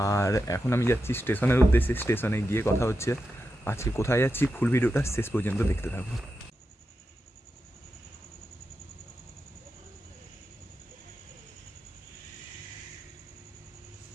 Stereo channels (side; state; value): both; normal; correlation 0.89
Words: আর এখন আমি যাচ্ছি স্টেশনের উদ্দেশ্যে। স্টেশনে গিয়ে কথা হচ্ছে। আজকে কোথায় যাচ্ছি ফুল ভিডিওটা শেষ পর্যন্ত দেখতে থাকবো।